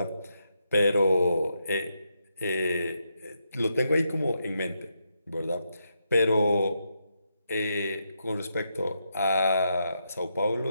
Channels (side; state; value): both; inverted; correlation -0.83